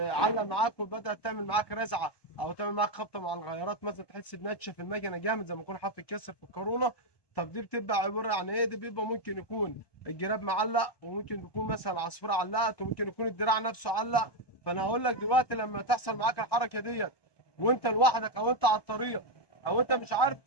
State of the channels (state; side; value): late; right; 1.2 ms